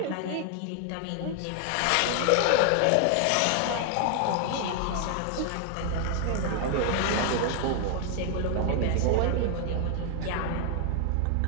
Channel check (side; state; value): both; different; correlation 0.00